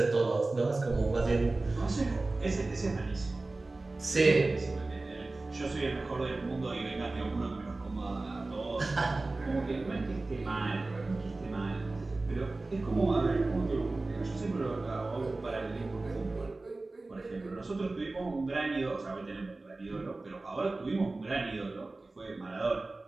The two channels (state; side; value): quieter; left; 3.2 dB